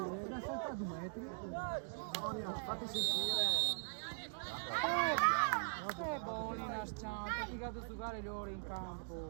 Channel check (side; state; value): left; silent; digital silence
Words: L'ha saltato 2 metri. Fatti sentire! Che bolina scianta, ti vado a giocare le ore in